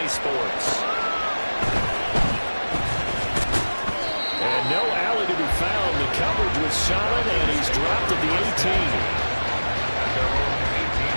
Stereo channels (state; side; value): inverted; both; correlation -1.00